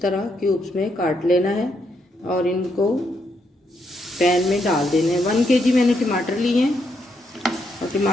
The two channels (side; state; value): both; normal; correlation 0.77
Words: तरह क्यूब्स में काट लेना है और इनको पैन में डाल देने हैं। 1 kg मैंने टमाटर लिए हैं और